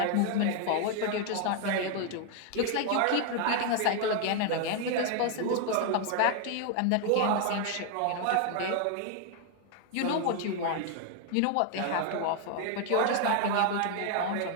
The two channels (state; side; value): different; both; correlation 0.00